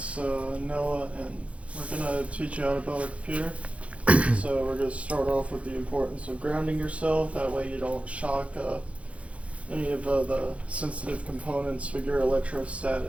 Noah, and we're gonna teach you how to build a computer. So we're gonna start off with the importance of grounding yourself, that way you don't shock any of the sensitive components with your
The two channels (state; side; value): late; left; 0.063 ms